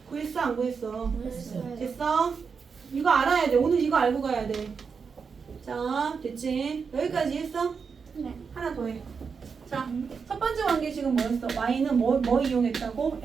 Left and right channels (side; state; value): left; quieter; 5.7 dB